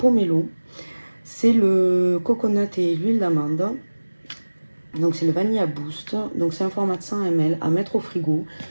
C'est le coconut et l'huile d'amande. Donc c'est le Vanilla Boost. Donc c'est un format de 100 ml à mettre au frigo.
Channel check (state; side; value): inverted; both; correlation -1.00